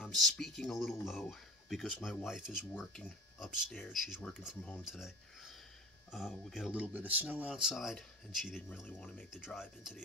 speaking a little low because my wife is working upstairs. She's working from home today. We got a little bit of snow outside, and she didn't really want to make the drive into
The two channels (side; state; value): both; normal; correlation 0.37